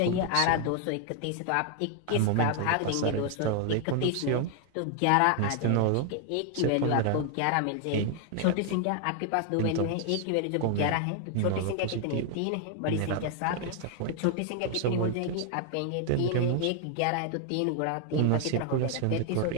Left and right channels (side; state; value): both; different; correlation 0.00